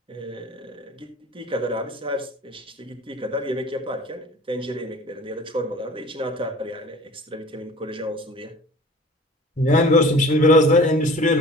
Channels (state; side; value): normal; both; correlation 0.45